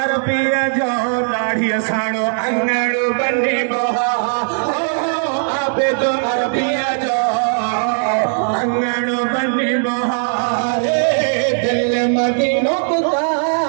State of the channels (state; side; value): silent; left; 61 dB below the other